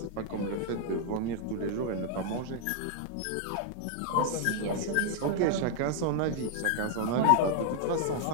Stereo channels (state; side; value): different; both; correlation 0.00